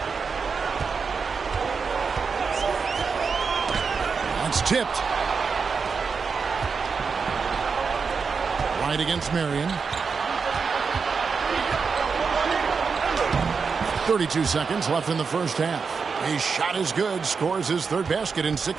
That's tipped. Right against Marion. 32 seconds left in the first half. His shot is good. Scores his third basket in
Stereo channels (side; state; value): left; quieter; 5.3 dB